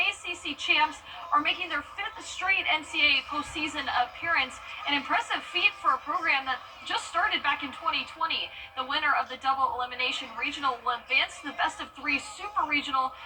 ACC champs are making their 5th straight NCAA postseason appearance, an impressive feat for a program that just started back in 2020. The winner of the double elimination regional will advance to the best-of-3 super regional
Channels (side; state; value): both; identical; correlation 1.00